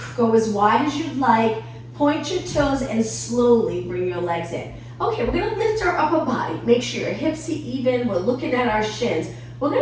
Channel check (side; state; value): both; identical; correlation 1.00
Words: Go as wide as you'd like, point your toes, and slowly bring your legs in. Okay, we're gonna lift our upper body. Make sure your hips are even, we're looking at our shins. We're